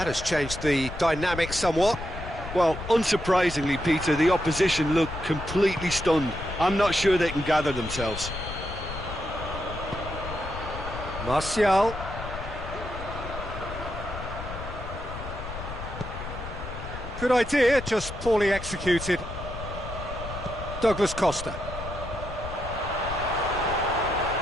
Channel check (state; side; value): noise; left; rumble, 9 dB below the sound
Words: has changed the dynamic somewhat. Well, unsurprisingly, Peter, the opposition look completely stunned. I'm not sure they can gather themselves. Martial. Good idea, just poorly executed. Douglas Costa.